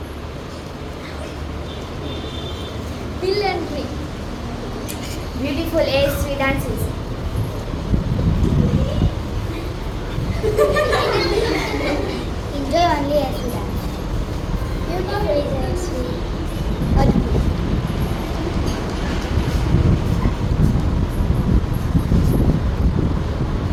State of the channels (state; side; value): identical; both; correlation 1.00